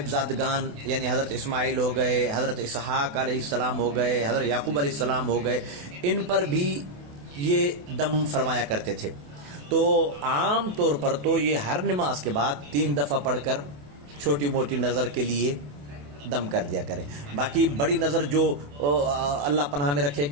یعنی حضرت اسماعیل ہو گئے، حضرت اسحاق علیہ السلام ہو گئے، حضرت یعقوب علیہ السلام ہو گئے، ان پر بھی یہ دم فرمایا کرتے تھے. تو عام طور پر تو یہ ہر نماز کے بعد 3 دفعہ پڑھ کر چھوٹی موٹی نظر کے لیے دم کر دیا کرے. باقی بڑی نظر جو اللہ پناہ میں رکھے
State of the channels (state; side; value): late; left; 28 ms